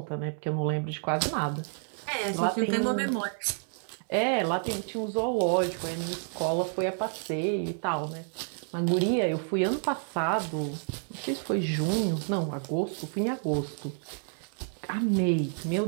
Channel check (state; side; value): silent; left; 58 dB below the other